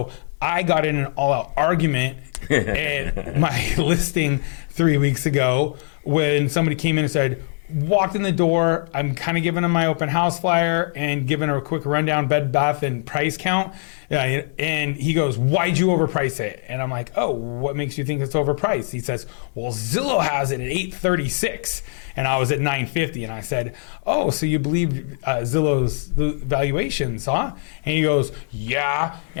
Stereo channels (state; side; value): silent; right; digital silence